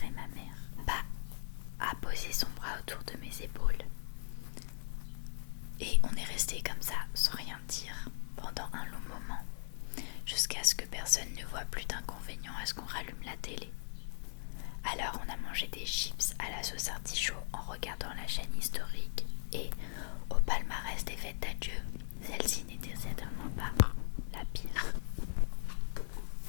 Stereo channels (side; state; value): right; silent; digital silence